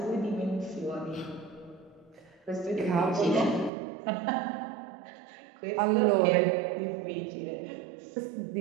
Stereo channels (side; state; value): left; drops out; at 3.7 s